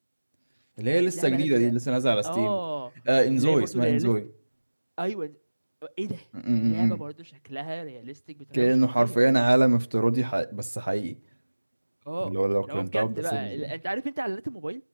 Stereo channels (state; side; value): inverted; both; correlation -1.00